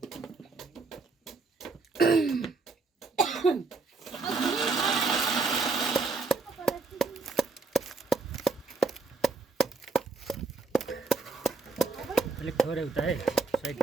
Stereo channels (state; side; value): quieter; left; 4.0 dB